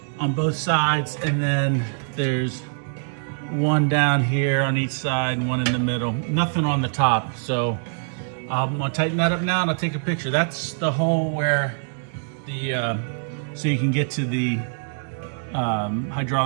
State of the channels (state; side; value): silent; left; 63 dB below the other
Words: on both sides, and then there's one down here on each side and one in the middle. Nothing on the top. So I'm gonna tighten that up now and I'll take a picture. That's the hole where the, so you can get to the